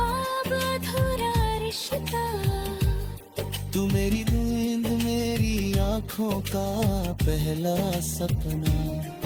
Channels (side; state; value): both; identical; correlation 1.00